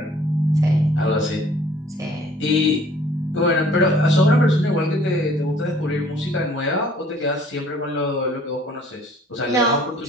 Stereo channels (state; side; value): normal; both; correlation 0.56